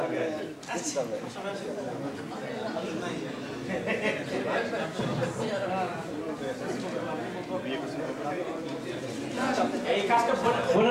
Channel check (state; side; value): identical; both; correlation 1.00